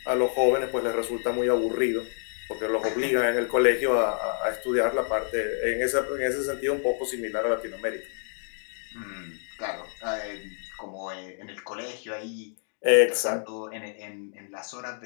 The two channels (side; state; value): right; silent; digital silence